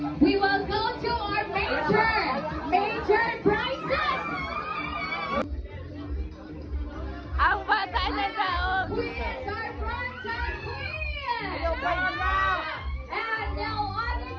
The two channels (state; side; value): identical; both; correlation 1.00